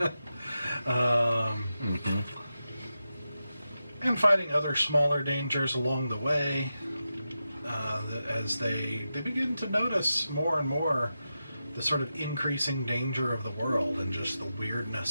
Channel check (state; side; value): inverted; both; correlation -0.90